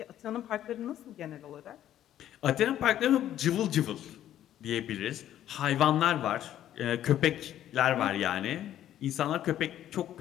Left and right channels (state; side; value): quieter; right; 11.7 dB